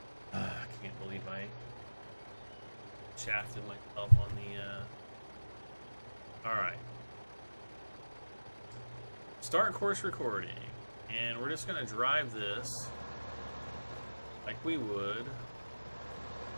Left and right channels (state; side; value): inverted; both; correlation -1.00